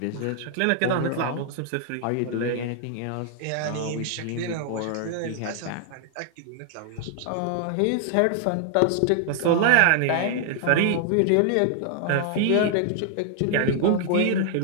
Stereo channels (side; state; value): both; different; correlation 0.00